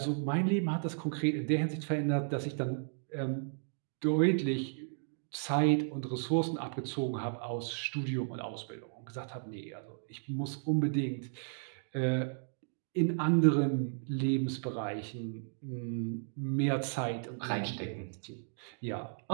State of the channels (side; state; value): left; silent; digital silence